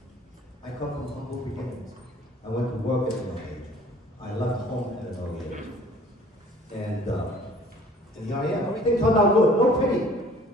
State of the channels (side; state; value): both; normal; correlation 0.52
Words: I come from humble beginnings. I went to work at an early age. I left home at an early age. And here I am. Everything turned out good. No pity.